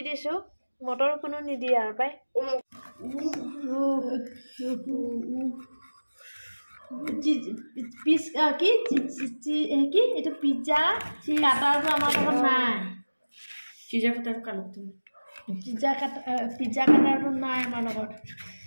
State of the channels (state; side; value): inverted; both; correlation -1.00